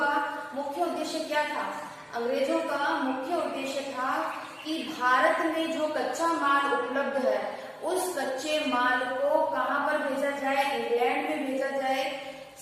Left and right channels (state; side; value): identical; both; correlation 1.00